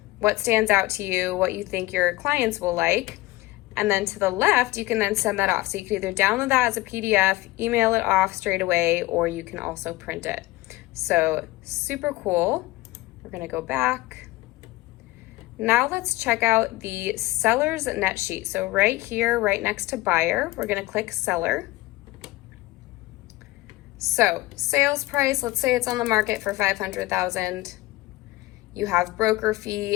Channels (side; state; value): right; quieter; 19.3 dB